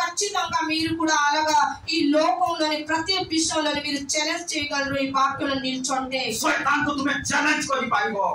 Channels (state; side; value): identical; both; correlation 1.00